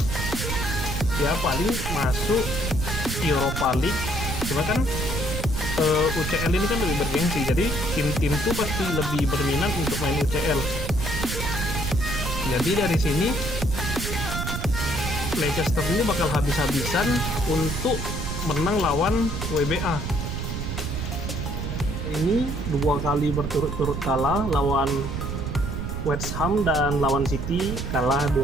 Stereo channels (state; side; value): noise; right; rumble, 4 dB below the sound